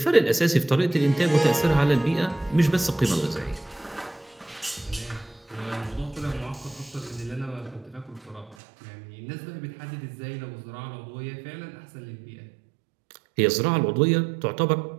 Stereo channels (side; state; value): left; drops out; at 8.6 s